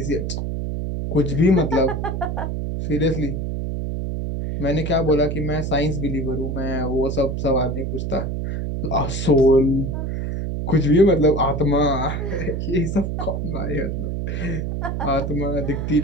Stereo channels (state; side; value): noise; right; hum, 2 dB below the sound